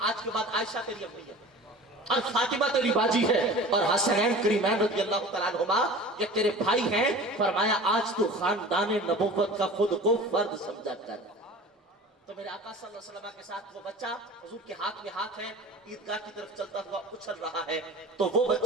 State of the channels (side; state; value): both; normal; correlation 0.39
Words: آج کے بعد عائشہ تیری امی ہے اور فاطمہ تیری باجی ہے اور حسنین کریمین رضی اللہ تعالیٰ عنہما یہ تیرے بھائی ہیں. فرمایا آج تو خاندان نبوت کا خود کو فرد سمجھا کر. تو میرے آقا صلی اللہ علیہ وسلم کے ساتھ وہ بچہ حضور کے ہاتھ میں ہاتھ ہے، عیدگاہ کی طرف چلتا ہوا اچھل رہا ہے. تو وہ